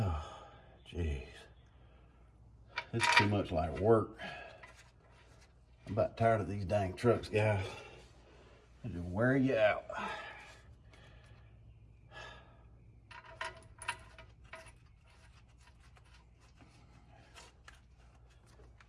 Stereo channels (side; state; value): both; identical; correlation 1.00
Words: jeez. This is too much like work. I'm about tired of these dang trucks, guys. They just wear you out.